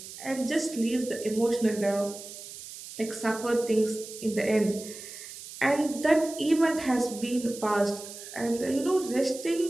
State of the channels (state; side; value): noise; right; hiss, 13 dB below the sound